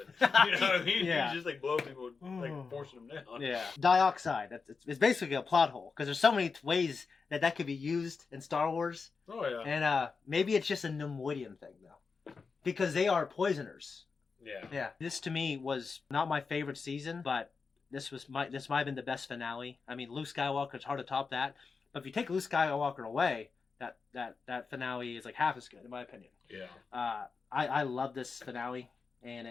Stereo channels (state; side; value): quieter; right; 4.9 dB